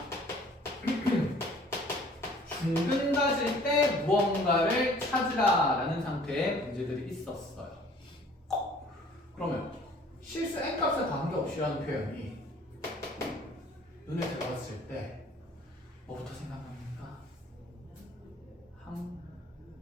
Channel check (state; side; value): normal; both; correlation 0.53